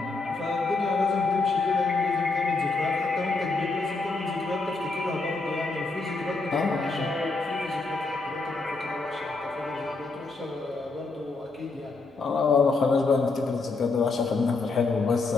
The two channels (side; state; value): right; quieter; 3.7 dB